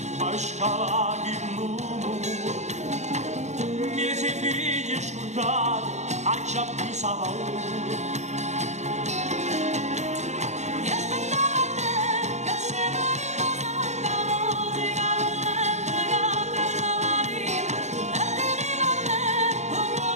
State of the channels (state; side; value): late; left; 0.33 ms